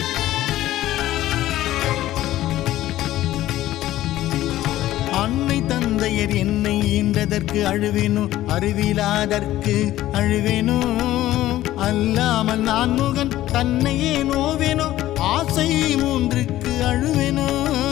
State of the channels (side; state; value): right; quieter; 14.6 dB